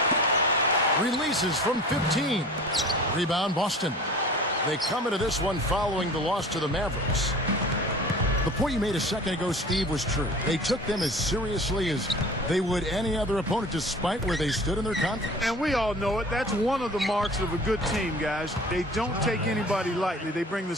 Releases from 15. Rebound, Boston. They come into this one following the loss to the Mavericks. The point you made a second ago, Steve, was true. They took them as seriously as they would any other opponent, despite where they stood in their conference. And we all know it. That's one of the marks of a good team, guys. They don't take anybody lightly. They bring the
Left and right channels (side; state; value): both; normal; correlation 0.42